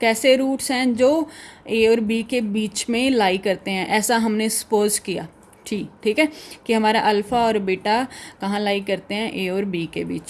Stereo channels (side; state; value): both; identical; correlation 1.00